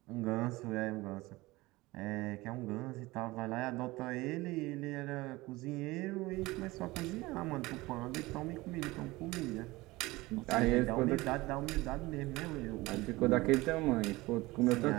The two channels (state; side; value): quieter; left; 20.6 dB